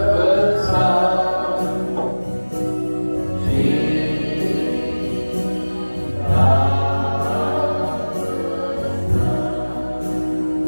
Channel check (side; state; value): both; inverted; correlation -1.00